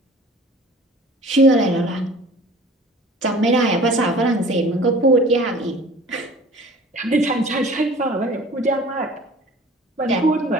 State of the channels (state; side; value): normal; both; correlation 0.45